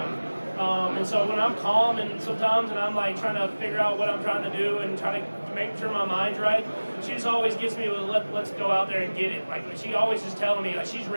And so when I'm calm and sometimes and I'm like trying to figure out what I'm trying to do and trying to make sure my mind's right, she just always gets me with let's go out there and get it. Like she always is telling me like she's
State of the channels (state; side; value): inverted; both; correlation -1.00